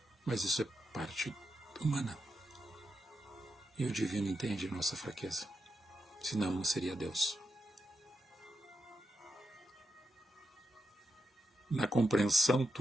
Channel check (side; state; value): both; normal; correlation 0.86